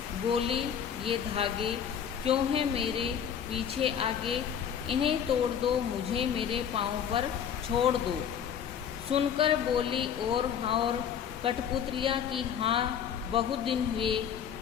बोली ये धागे क्यों हैं मेरे पीछे आगे, इन्हें तोड़ दो मुझे मेरे पाँव पर छोड़ दो। सुनकर बोली और कठपुतलियाँ की हाँ बहुत दिन हुए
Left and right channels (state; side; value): quieter; right; 8.3 dB